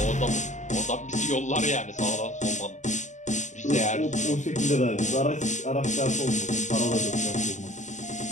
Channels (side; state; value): right; late; 0.35 ms